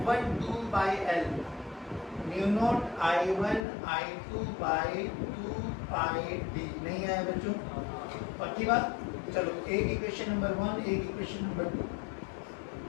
2 by L mu naught I1 I2 by 2 pi D. नहीं आया बच्चों? पक्की बात? चलो एक इक्वेशन नंबर 1, एक इक्वेशन नंबर 2।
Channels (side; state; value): right; drops out; at 3.7 s